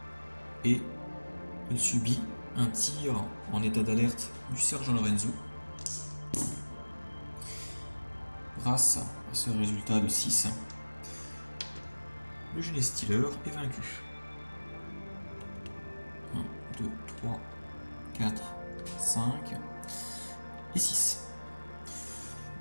et il subit un tir en état d'alerte du sergent Lorenzo. Grâce à ce résultat de 6, le Genestealer est vaincu. 1, 2, 3, 4, 5 et 6.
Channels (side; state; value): both; inverted; correlation -1.00